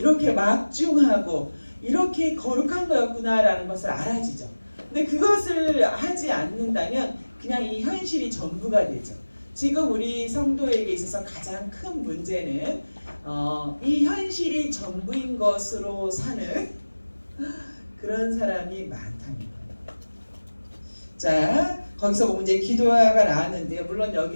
막중하고 이렇게 거룩한 거였구나라는 것을 알아지죠. 근데 그것을 하지 않는다면 그냥 이 현실이 전부가 되죠. 지금 우리 성도에게 있어서 가장 큰 문제는 이 현실이 전부인 것으로 사는 그런 사람이 많다는 거예요. 자, 거기서 보면 이제 기도가 나왔는데요. 물론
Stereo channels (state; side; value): inverted; both; correlation -1.00